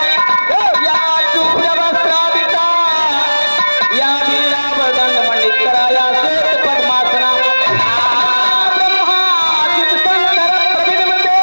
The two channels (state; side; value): inverted; both; correlation -1.00